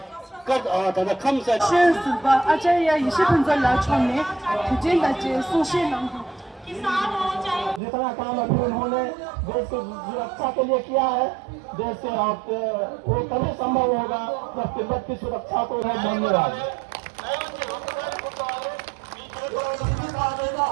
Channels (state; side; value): drops out; left; at 7.8 s